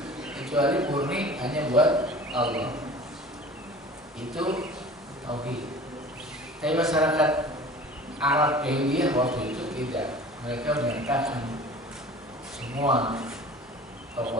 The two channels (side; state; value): both; normal; correlation 0.42